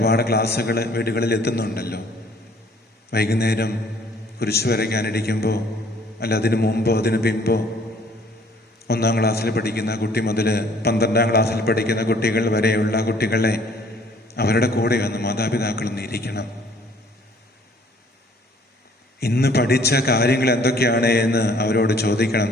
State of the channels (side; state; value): both; normal; correlation 0.58